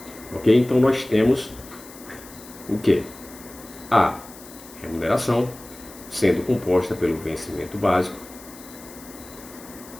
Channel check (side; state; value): left; noise; hiss, 19 dB below the sound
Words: Ok? Então, nós temos o quê? A remuneração, sendo composta pelo vencimento básico